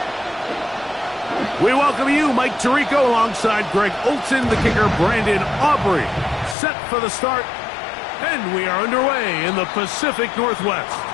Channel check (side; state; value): right; drops out; at 6.6 s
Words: We welcome you, Mike Tirico, alongside Greg Olson, the kicker, Brandon Aubrey. Set for the start, and we are underway in the Pacific Northwest.